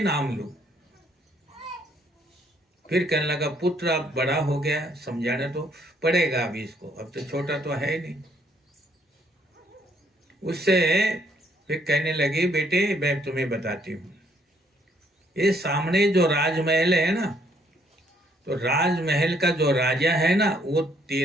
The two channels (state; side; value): normal; both; correlation 0.68